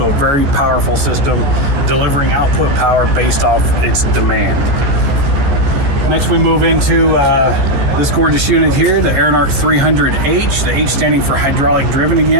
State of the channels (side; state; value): left; late; 14 ms